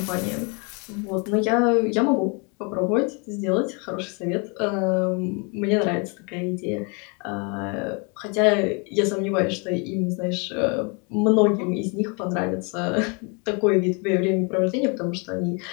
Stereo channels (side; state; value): right; quieter; 33.2 dB